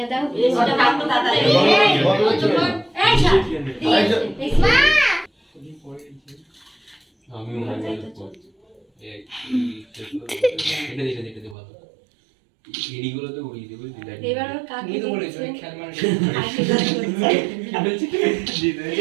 দাও ওটা কাটো দাদা আমি এদিকগুলোতে উড়িয়ে দেবো এবার ওর কাকে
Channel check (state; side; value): drops out; left; at 11.6 s